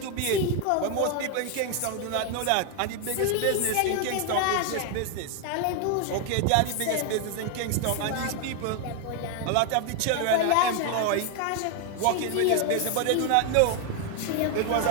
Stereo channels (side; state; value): both; different; correlation 0.00